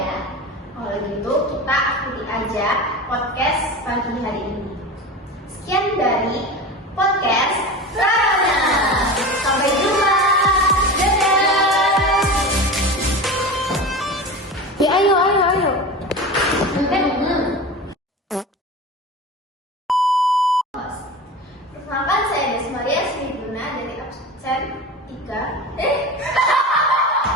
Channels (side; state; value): both; normal; correlation 0.30